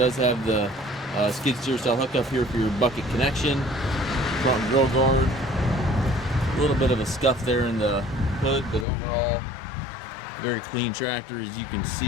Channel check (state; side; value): drops out; right; at 8.8 s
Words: have the skid steer style hookup here for your bucket connection. Front grill guard. A little bit of a scuff there in the hood, but overall very clean tractor, as you can